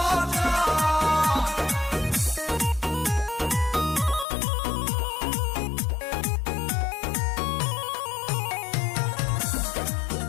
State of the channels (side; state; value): right; drops out; at 4.2 s